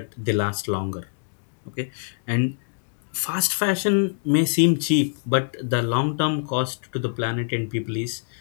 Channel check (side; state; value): right; silent; digital silence